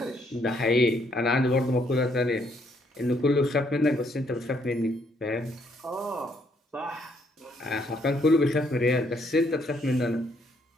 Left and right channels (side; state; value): both; normal; correlation 0.70